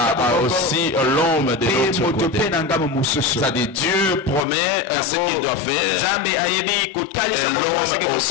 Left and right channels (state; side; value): drops out; right; at 4.5 s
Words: aussi l'homme de l'autre côté. C'est-à-dire Dieu promet ce qu'il doit faire et l'homme